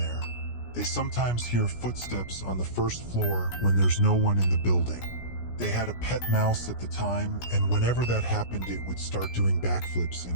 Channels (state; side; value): late; right; 17 ms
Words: They sometimes hear footsteps on the first floor when there's no one in the building. They had a pet mouse at the time, and whenever that happened it would start doing backflips in